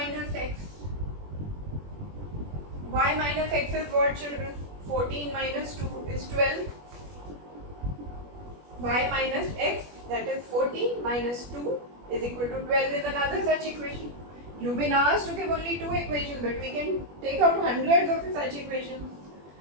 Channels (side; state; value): left; late; 21 ms